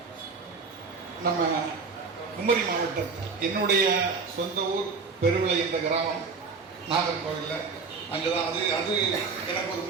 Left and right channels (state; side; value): quieter; left; 4.8 dB